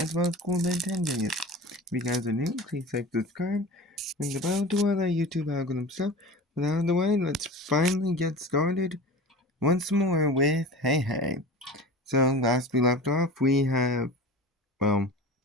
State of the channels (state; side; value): normal; both; correlation 0.34